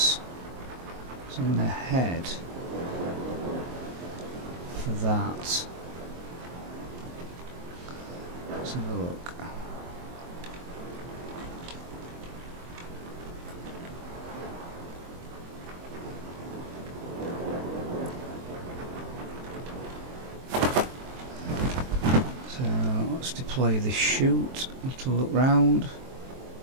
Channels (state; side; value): late; left; 23 ms